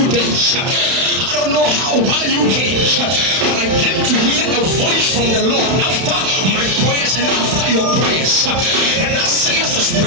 day? I don't know why you came, but I came to hear a voice from the Lord after my prayers and after your prayers. And that says the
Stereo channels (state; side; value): late; left; 31 ms